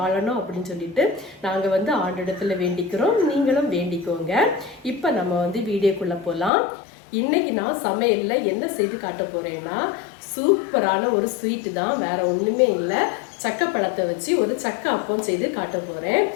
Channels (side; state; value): right; drops out; at 6.5 s